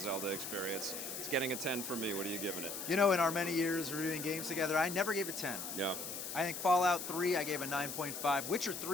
experience. It's getting a 10 for me. What are you giving it? You know, in our many years reviewing games together, I never gave a 10. Yeah. I think Fallout 3, I gave a 9.5. Witcher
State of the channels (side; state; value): left; noise; hiss, 6 dB below the sound